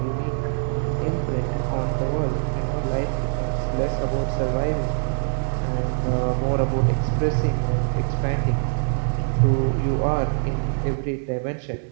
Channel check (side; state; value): left; silent; digital silence